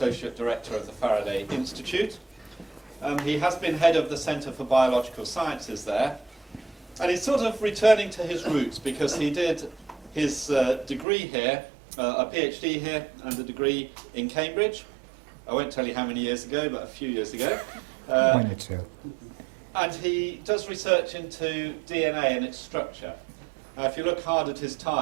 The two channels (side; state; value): left; drops out; at 11.1 s